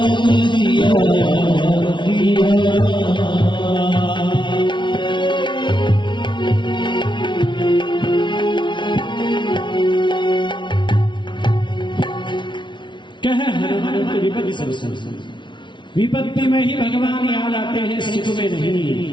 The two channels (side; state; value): right; late; 0.23 ms